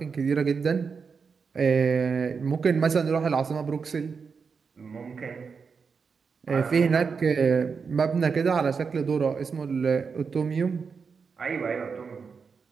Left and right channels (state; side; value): quieter; left; 5.5 dB